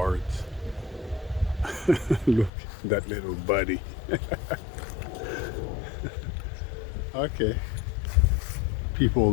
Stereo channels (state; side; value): drops out; right; at 2.5 s